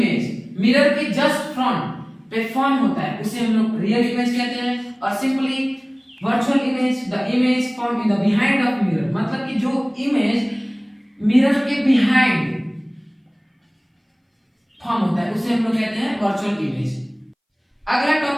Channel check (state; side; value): identical; both; correlation 1.00